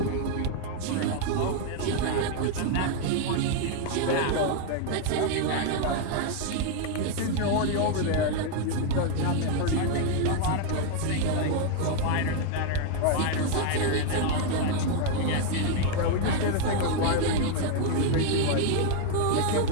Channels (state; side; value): different; both; correlation 0.01